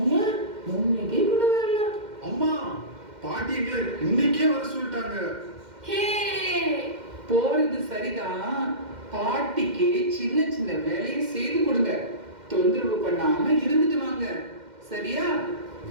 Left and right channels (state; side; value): late; left; 2.1 ms